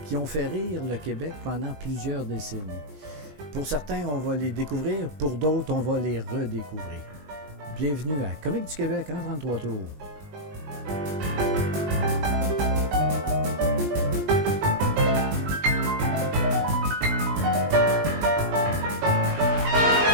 qui ont fait rire le Québec pendant plusieurs décennies. Pour certains, on va les découvrir, pour d'autres, on va les redécouvrir. Bienvenue à Comiques du Québec en 33 tours.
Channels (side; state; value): left; late; 20 ms